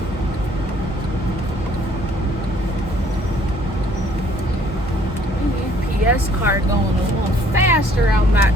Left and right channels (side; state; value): both; normal; correlation 0.60